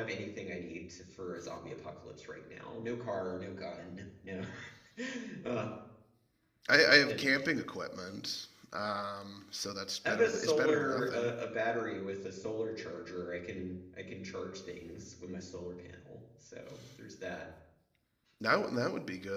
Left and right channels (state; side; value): identical; both; correlation 1.00